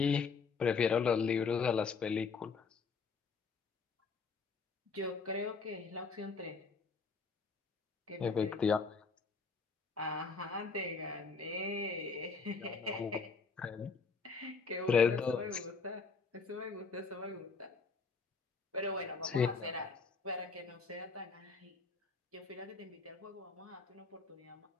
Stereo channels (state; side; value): quieter; right; 4.9 dB